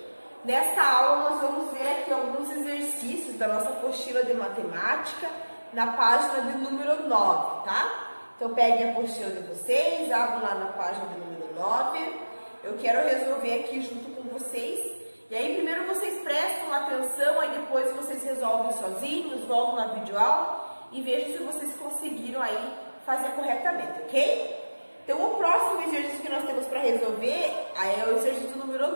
Nesta aula nós vamos ver aqui alguns exercícios da nossa apostila de matemática na página de número 9, tá? Então peguem a apostila de vocês, abram lá na página de número 9. Eu quero resolver aqui junto com vocês. E aí primeiro vocês prestam atenção, aí depois vocês resolvem sozinhos, voltam na videoaula e vejam se vocês conseguiram aí fazer corretamente, ok? Então, o próximo exercício que nós temos para resolver é o exercício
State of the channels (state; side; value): inverted; both; correlation -1.00